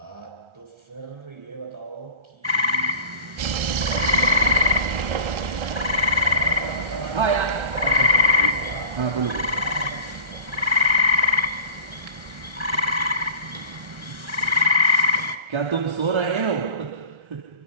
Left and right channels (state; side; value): late; left; 1.3 ms